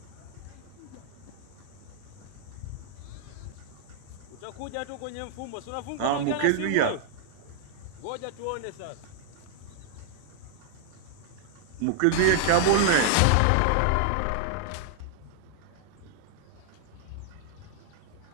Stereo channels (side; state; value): both; different; correlation -0.01